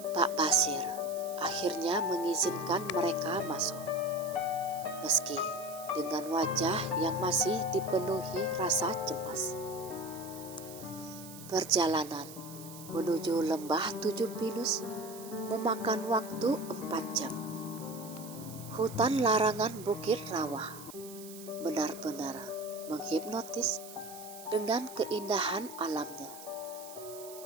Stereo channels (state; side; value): noise; right; hiss, 15 dB below the sound